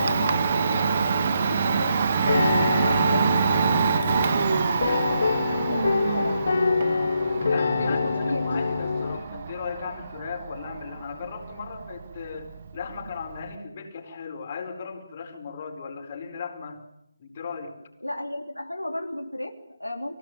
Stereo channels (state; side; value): inverted; both; correlation -0.79